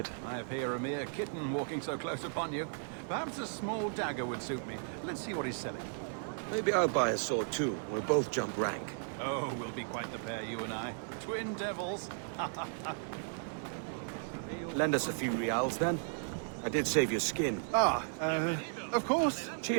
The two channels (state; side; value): silent; left; digital silence